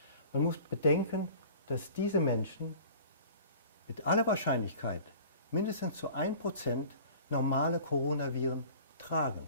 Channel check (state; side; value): inverted; both; correlation -0.44